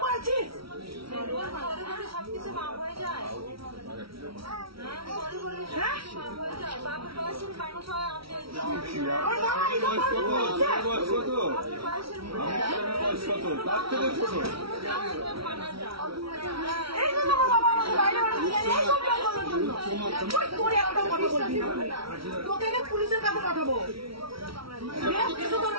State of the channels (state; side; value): late; left; 0.75 ms